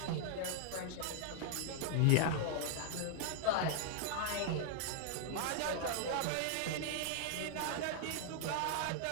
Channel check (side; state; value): both; different; correlation 0.00